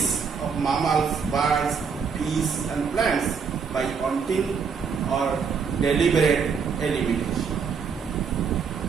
of mammals, birds, fish and plants by hunting or deliberate elimination.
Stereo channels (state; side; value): quieter; left; 6.1 dB